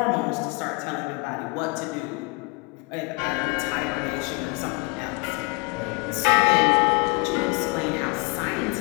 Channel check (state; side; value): quieter; right; 28.7 dB